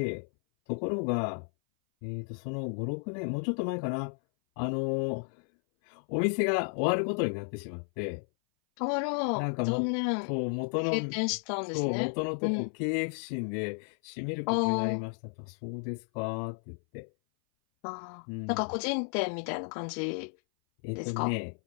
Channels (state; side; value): silent; right; 56 dB below the other